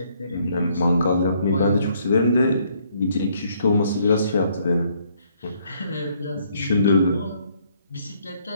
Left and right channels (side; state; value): both; inverted; correlation -0.68